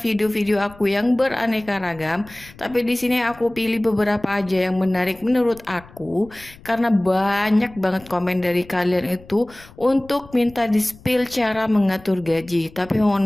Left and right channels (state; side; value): noise; left; rumble, 22 dB below the sound